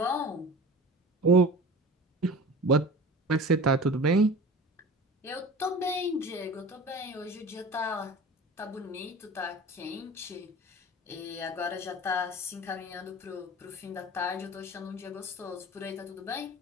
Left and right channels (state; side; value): normal; both; correlation 0.37